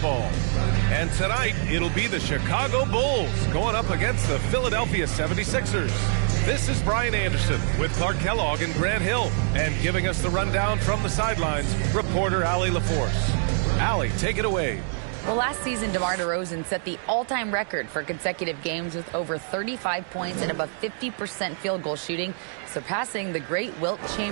And tonight, it'll be the Chicago Bulls going up against the Philadelphia 76ers. This is Brian Anderson with Clark Kellogg and Grant Hill. And giving us the rundown from the sidelines, reporter Allie LaForce. Allie, take it away. Well, last season, DeMar DeRozan set the all-time record for consecutive games with over 35 points and above 50% field goal shooting, surpassing the great Wilt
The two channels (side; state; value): left; silent; 62 dB below the other